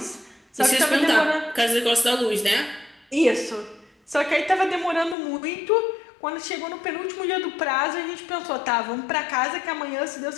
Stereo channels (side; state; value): right; drops out; at 5.2 s